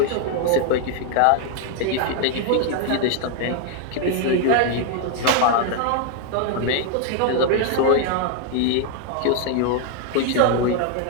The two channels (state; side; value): different; both; correlation 0.00